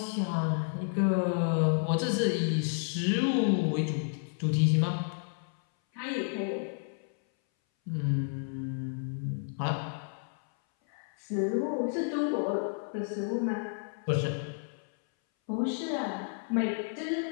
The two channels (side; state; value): right; silent; 57 dB below the other